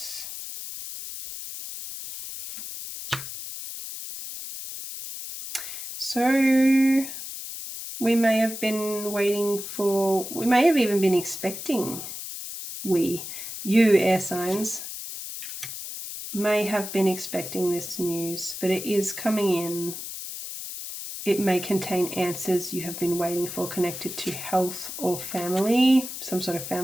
So we may have been waiting for, we may have even been expecting, you air signs, may have been expecting this news, but it is coming in. It may contain answers you have been waiting for connected to health or family, some sort of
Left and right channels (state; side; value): noise; left; hiss, 8 dB below the sound